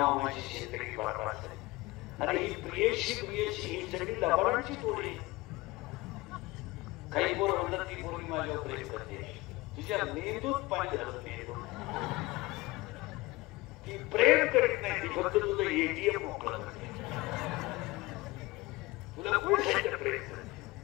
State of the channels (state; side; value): quieter; right; 20.9 dB